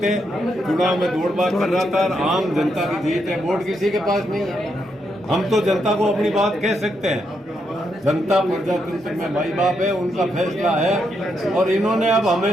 चुनाव में दौड़-भाग कर रहा था। और आम जनता की जीत है, वोट किसी के पास नहीं है। हम तो जनता को अपनी बात कह सकते हैं। जनता प्रजातंत्र में माई बाप है, उनका फैसला है। और इन्होंने अब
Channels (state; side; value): normal; both; correlation 0.80